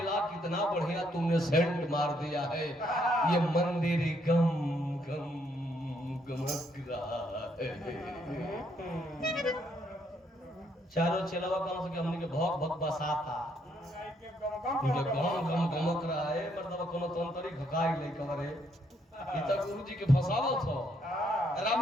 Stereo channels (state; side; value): normal; both; correlation 0.72